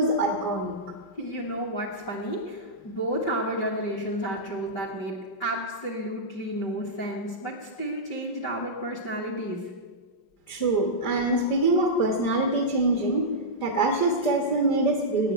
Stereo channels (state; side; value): late; right; 5.0 ms